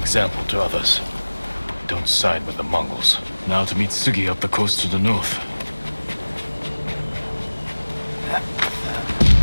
to others. Don't side with the Mongols. Now to meet Sugi up the coast to the north.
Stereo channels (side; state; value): both; inverted; correlation -1.00